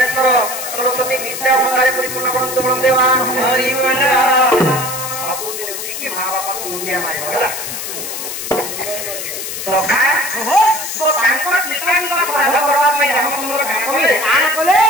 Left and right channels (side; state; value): left; noise; hiss, 6 dB below the sound